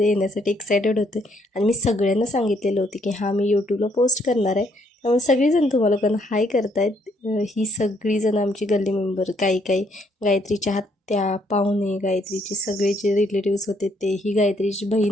येण्यासाठी एक्सायटेड होते आणि मी सगळ्यांना सांगितलेलं होते की हां, मी यूट्यूबला पोस्ट करणार आहे. त्यामुळे सगळीजण तुम्हाला पण हाय करतायत. ही सगळीजण आमची गल्ली मेंबर, काही काही गायत्रीच्या आत्या, पाहुणे, गायत्रीचे सगळे जे रिलेटिव्स होते ते, ही गायत्रीची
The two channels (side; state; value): both; normal; correlation 0.70